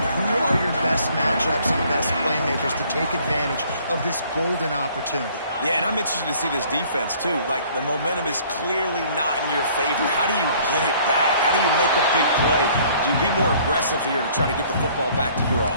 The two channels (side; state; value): both; inverted; correlation -0.57